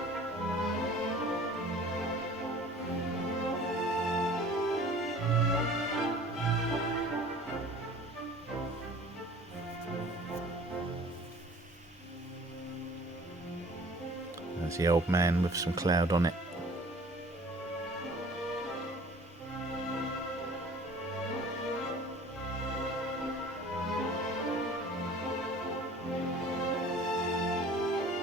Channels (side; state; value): both; normal; correlation 0.47